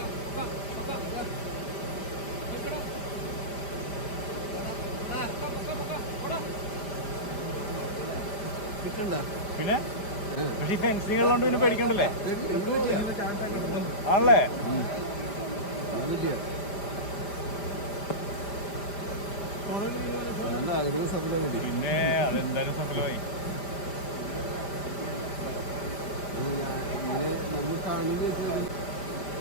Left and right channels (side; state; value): right; late; 5.0 ms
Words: പിന്നെ പക്ഷെ ഈ ഫെൻസിങ് ഉള്ളതുകൊണ്ട് പിന്നെ പേടിക്കണ്ടല്ലേ ആണല്ലേ. പിന്നെ അതെന്തായാലും സഫലമായി.